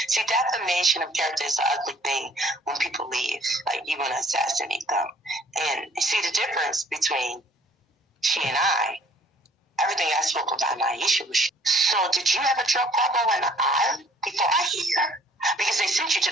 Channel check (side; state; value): both; normal; correlation 0.57